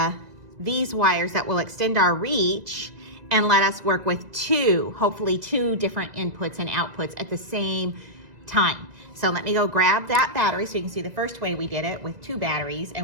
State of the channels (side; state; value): left; late; 2.0 ms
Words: these wires that will extend our reach and let us work with hopefully two different inputs and outputs at the same time. So let me go grab that battery so you can see the first way we did it with 2 batteries